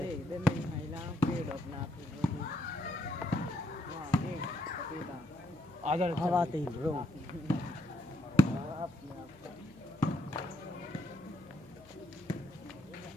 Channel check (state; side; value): noise; left; hum, 24 dB below the sound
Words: इधर नहीं महिला पेड़ अपना आजा हवा आते ही रो